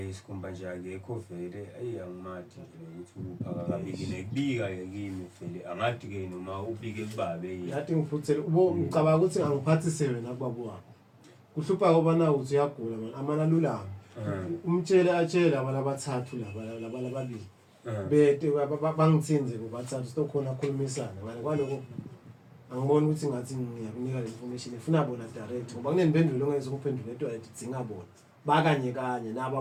isikhumba nje akekho vele ayangimati nje ukuthi uphaka kabikile kubika ke kimi vele angadi ke noma ubike kubabe yathi ngiphuthele ubo ngicabanga ukuthi angiphathise wena kubabo wakho kuhlupha ngoba na uthi uyagula man amana lulama umtshele atshela abantu abathathu laba lababili bete bangithinze kubathathu sokhona akhulumisana ngale kwaloko angiboni ukuthi ngathi ngiyakunika le information ifuna bona direct ngoba kunemphendulo ongeze ukuphendula into ayidinga bona bakanye kanye nabo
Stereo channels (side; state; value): both; identical; correlation 1.00